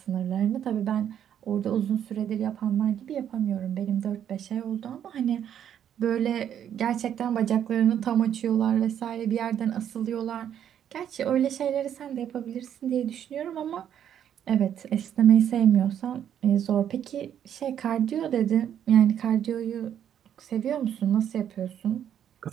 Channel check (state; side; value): quieter; left; 9.6 dB